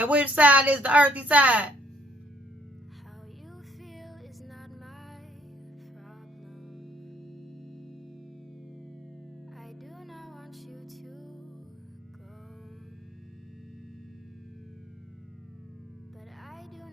which side is the Earthy side?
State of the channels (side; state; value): both; normal; correlation 0.65